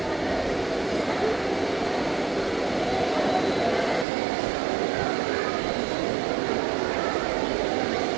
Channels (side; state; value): left; drops out; at 4.0 s